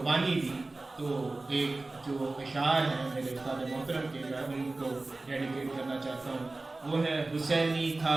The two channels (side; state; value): left; quieter; 3.2 dB